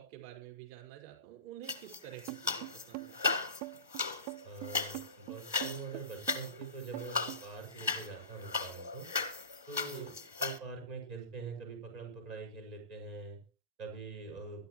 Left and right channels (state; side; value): late; left; 1.5 ms